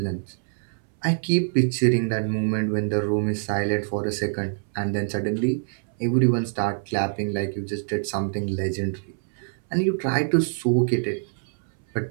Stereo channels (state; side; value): silent; left; 62 dB below the other